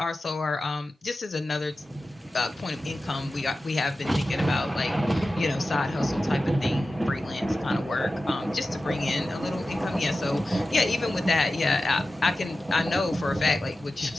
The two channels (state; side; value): normal; both; correlation 0.94